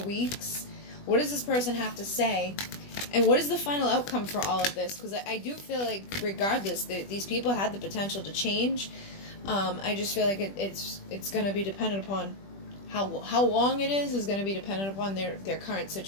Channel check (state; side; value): late; right; 20 ms